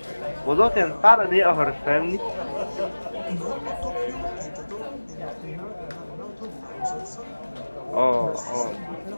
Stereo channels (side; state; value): both; inverted; correlation -1.00